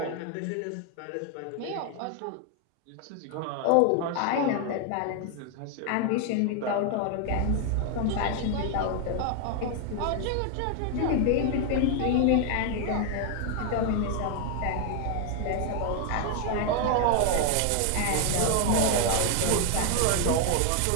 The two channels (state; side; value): different; both; correlation 0.01